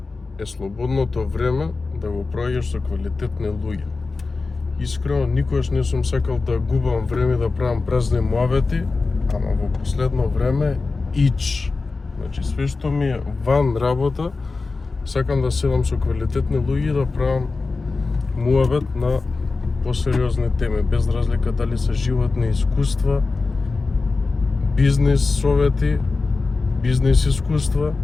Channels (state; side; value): quieter; right; 3.9 dB